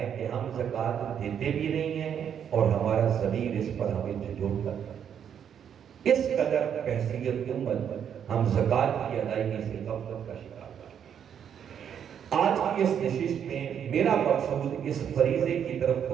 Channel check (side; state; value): left; quieter; 8.5 dB